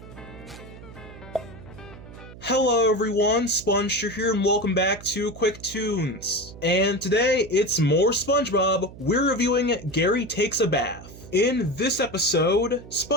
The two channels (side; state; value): right; noise; hum, 17 dB below the sound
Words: Hello everyone, SpongeStur here and welcome back to QUICKTOONS. And today it's more SpongeBob. We're reviewing Gary Takes a Bath. In this episode,